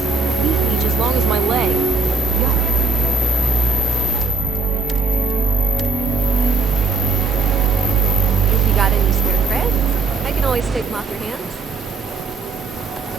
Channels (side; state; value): left; quieter; 4.0 dB